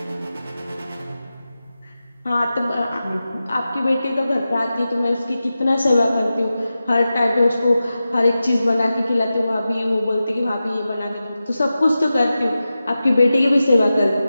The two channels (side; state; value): both; inverted; correlation -0.93